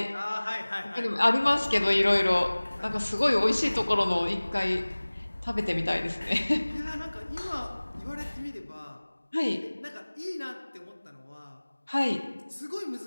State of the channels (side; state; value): both; inverted; correlation -1.00